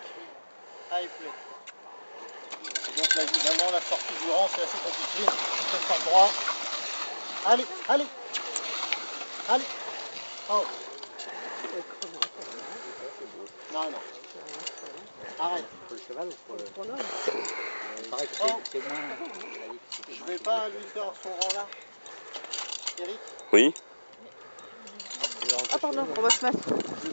Allez, plus. Et donc là, évidemment, la sortie du rang, c'est assez compliqué. Il faut faire droit. Allez, allez. Allez. Oh. Non, non. Arrête. Pour le cheval ou pour le... Chrono. Pareil que Oh. c'est moins... Je vais pas lui faire son rang là. Eric, Oui. Ah pardon, on va se mettre. je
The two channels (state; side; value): inverted; both; correlation -1.00